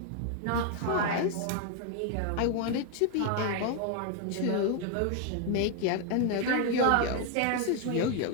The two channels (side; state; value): both; different; correlation 0.00